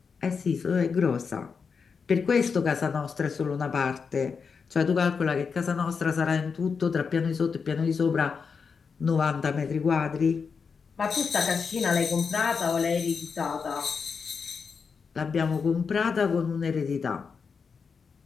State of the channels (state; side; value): quieter; right; 5.6 dB